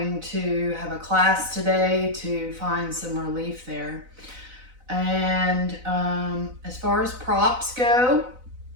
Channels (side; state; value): left; late; 4.0 ms